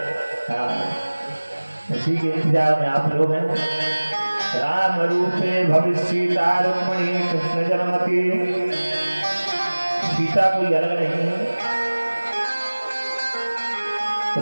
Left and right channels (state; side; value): inverted; both; correlation -1.00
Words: इसी के इंतजार में आप लोग हैं। राम रूपे भविष्य सीता रुक्मणी कृष्ण जन्मति। सीता कोई अलग नहीं है,